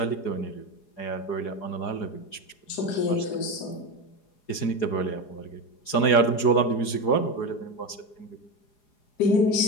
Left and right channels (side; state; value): right; late; 4.8 ms